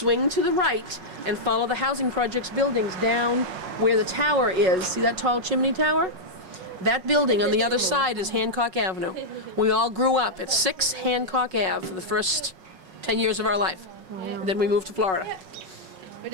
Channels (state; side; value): late; left; 5.4 ms